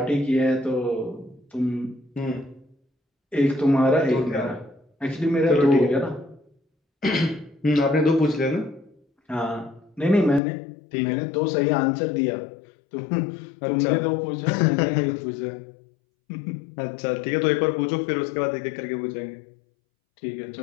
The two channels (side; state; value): right; drops out; at 10.4 s